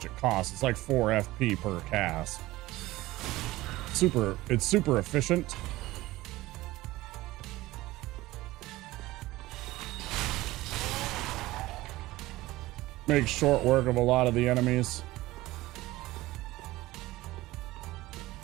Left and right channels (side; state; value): left; quieter; 18.1 dB